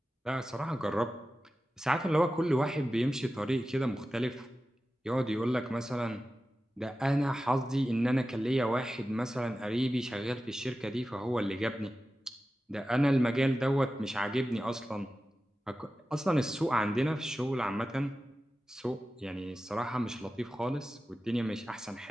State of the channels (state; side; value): normal; both; correlation 0.94